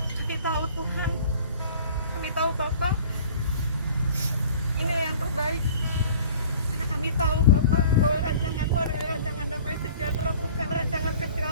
Kami tahu Tuhan, kami tahu Bapa, ini yang terbaik. Karena kami tahu Bapa bahwa rancangan-Mu adalah rancangan damai sejahtera, bukan rancangan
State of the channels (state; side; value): inverted; both; correlation -0.47